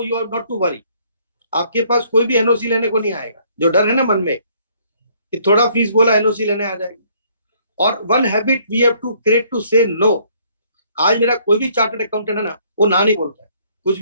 you are not to worry. आपके पास कोई भी एनओसी लेने को नहीं आएगा. जो डर है ना मन में कि थोड़ा फीस बोला एनओसी लेने आ जाएगा. और one habit we have to create to say no. आज मेरा कोई भी चार्टर्ड अकाउंटेंट है ना, वो ना नहीं बोलता है. कुछ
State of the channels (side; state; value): both; inverted; correlation -0.64